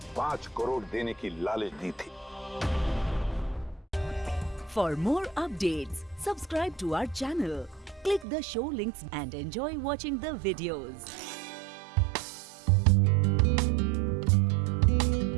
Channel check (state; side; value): drops out; left; at 8.2 s